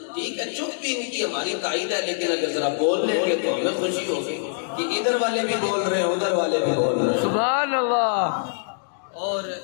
ٹھیک ہے چپ بھی ان کی ہماری تائید ہے, لیکن اگر ذرا بول لیں گے تو ہمیں خوشی ہوگی کہ ادھر والے بھی بول رہے ہیں ادھر والے بھی بول رہے ہیں. سبحان اللہ. اور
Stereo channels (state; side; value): silent; right; digital silence